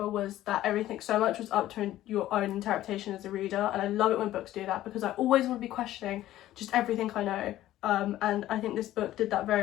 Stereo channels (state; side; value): quieter; right; 14.2 dB